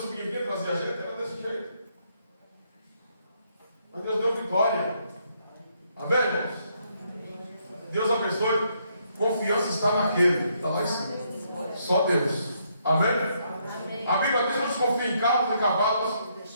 aqui, trazia a gente, era desse jeito. Mas Deus deu vitória. Amém, irmãos? Deus abençoe. Confiança está naquele. Está lá em cima. Só Deus. Amém? Amém. A Bíblia diz que nos confia em carros e cavalos,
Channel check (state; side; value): inverted; both; correlation -0.73